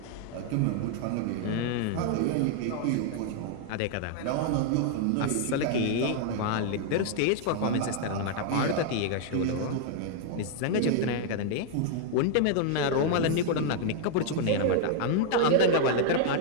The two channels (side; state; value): both; different; correlation 0.00